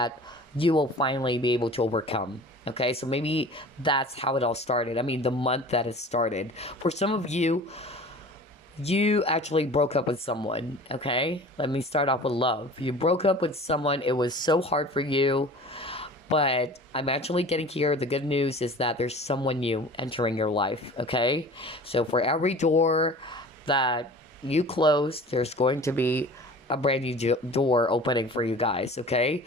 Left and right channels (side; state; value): both; normal; correlation 0.42